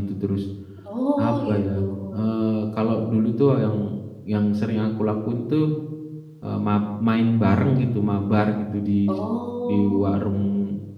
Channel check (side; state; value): both; identical; correlation 1.00